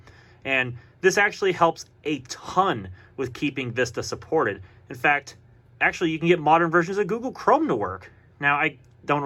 And this actually helps a ton with keeping Vista supported. In fact, actually, you can get modern versions of Google Chrome to work. Now, I don't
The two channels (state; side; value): identical; both; correlation 1.00